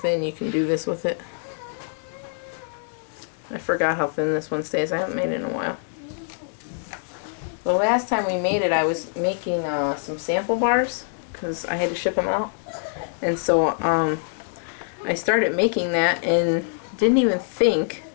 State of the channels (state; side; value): silent; right; digital silence